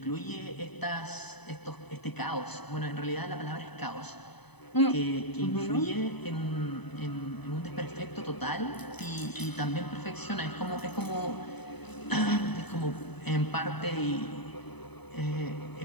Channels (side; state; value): right; late; 0.99 ms